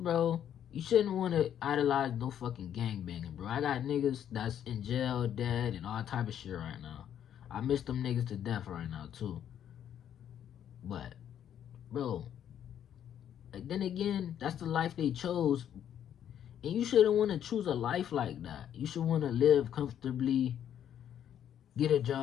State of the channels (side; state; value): right; quieter; 9.8 dB